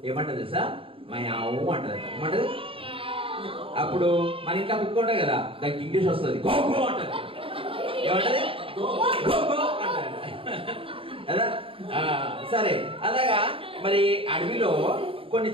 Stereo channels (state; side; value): late; left; 0.26 ms